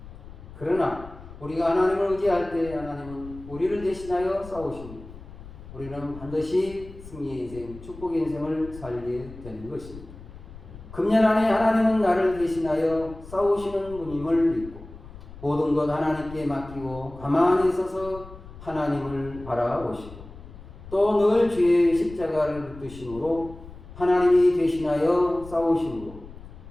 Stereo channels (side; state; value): left; noise; rumble, 16 dB below the sound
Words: 그러나 우리가 하나님을 의지할 때 하나님은 우리를 대신하여 싸우십니다. 우리는 반드시 승리의 인생, 축복의 인생을 살게 되는 것입니다. 금년 안에 하나님은 나를 대신하여 싸우시는 분임을 믿고 모든 것 하나님께 맡기고 가만히 서서 하나님을 바라보시고 또 늘 주의 십자가를 붙드심으로 하나님이 대신하여 싸우심으로